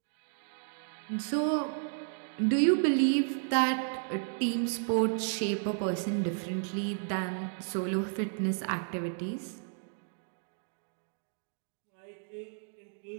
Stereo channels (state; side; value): silent; left; digital silence